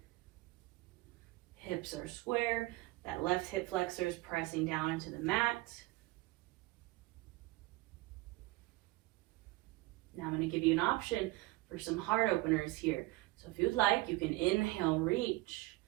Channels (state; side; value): quieter; left; 19.8 dB